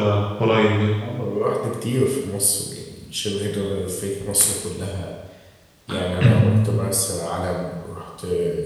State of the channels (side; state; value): both; identical; correlation 1.00